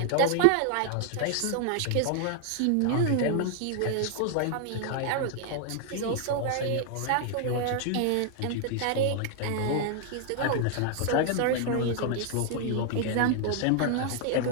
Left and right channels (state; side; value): different; both; correlation 0.00